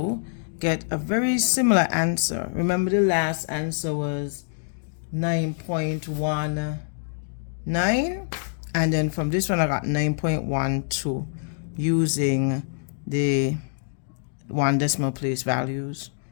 get a very similar answer. Remember, the last answer was 9.19, and then from this one I got 9.12 using the 1 decimal place values,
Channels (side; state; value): right; silent; digital silence